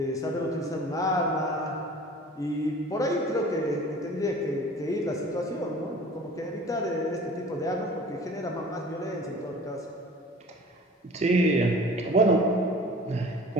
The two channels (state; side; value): normal; both; correlation 0.44